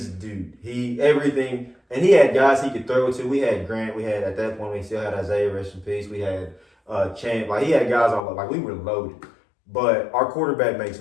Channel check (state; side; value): drops out; right; at 8.2 s